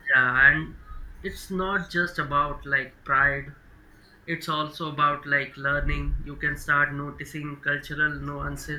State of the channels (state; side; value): identical; both; correlation 1.00